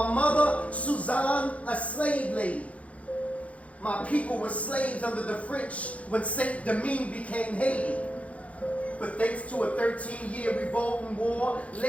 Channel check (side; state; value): right; late; 0.065 ms